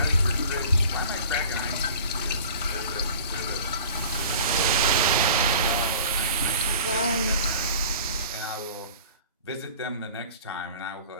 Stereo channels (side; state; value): both; inverted; correlation -0.44